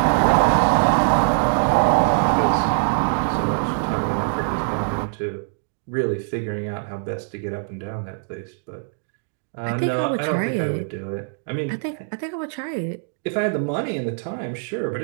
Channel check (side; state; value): left; silent; digital silence